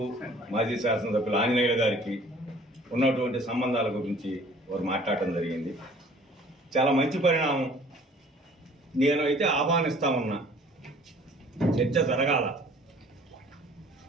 మాజీ శాసనసభ్యులు ఆంజనేయులు గారికి ఉన్నటువంటి సంబంధాల గురించి వారు మాట్లాడటం జరిగింది. చాలా మంచి పరిణామం. నేను అయితే ఆహ్వానిస్తా ఉన్నా, చర్చ జరగాల.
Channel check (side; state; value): both; normal; correlation 0.52